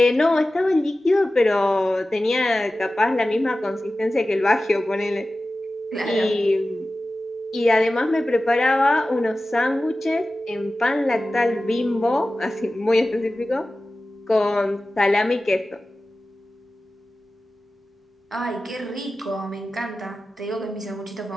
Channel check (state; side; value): normal; both; correlation 0.95